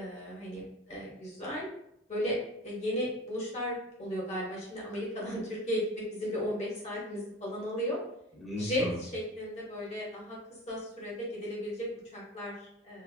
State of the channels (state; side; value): normal; both; correlation 0.35